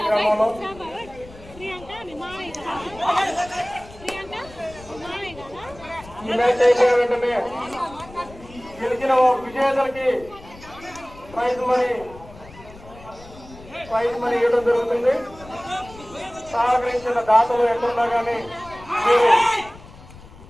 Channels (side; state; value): left; noise; rumble, 19 dB below the sound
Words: గ్రామంలో ఈ మ్యాచ్ అయిపోయిన వెంటనే గెలిచిన విజేతలకి ప్రైజ్ మనీ ఇవ్వడం జరుగుతుంది. సహకరించిన దాతలు ఎక్కడున్నా కానీ మీరు